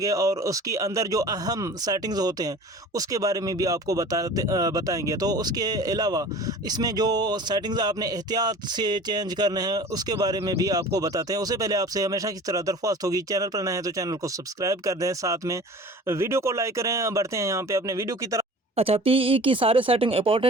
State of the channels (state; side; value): normal; both; correlation 0.42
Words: और उसके अंदर जो अहम सेटिंग्स होते हैं उसके बारे में भी आपको बताएंगे। तो उसके अलावा इसमें जो सेटिंग्स आपने एहतियात से चेंज करने हैं उसके बारे में भी आपको बताते हैं। उससे पहले आपसे हमेशा की तरह दरख्वास्त होगी, चैनल पर नए हैं तो चैनल को सब्सक्राइब कर दें, साथ में वीडियो को लाइक करें। बढ़ते हैं यहाँ पे अपने वीडियो की तरफ। अच्छा, पीई की सारे सेटिंग